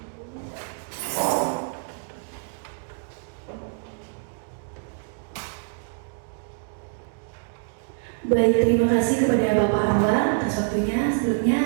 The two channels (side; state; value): left; silent; digital silence